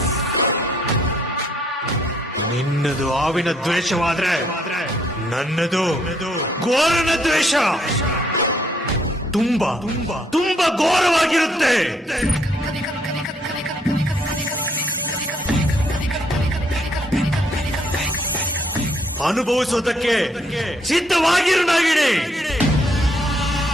ನಿನ್ನದು ಆವಿನ ದ್ವೇಷವಾದ್ರೆ ನನ್ನದು ಘೋರನ ದ್ವೇಷ ತುಂಬಾ ತುಂಬಾ ಘೋರವಾಗಿರುತ್ತೆ. ಅನುಭವಿಸೋದಕ್ಕೆ ಸಿದ್ಧವಾಗಿರು ನಾಗಿಣಿ.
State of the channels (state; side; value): normal; both; correlation 0.69